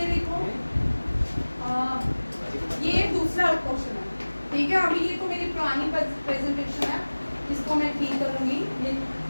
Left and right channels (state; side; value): inverted; both; correlation -1.00